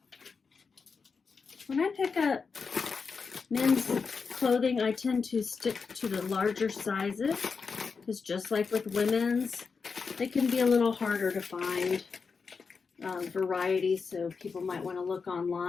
When I pick up men's clothing, I tend to stick to the larger sizes because just like with women's, they can be a little harder to find variety, so people might want to look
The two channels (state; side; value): quieter; right; 5.1 dB